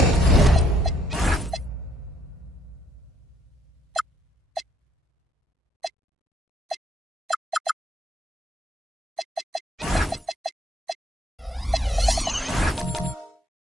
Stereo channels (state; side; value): normal; both; correlation 0.67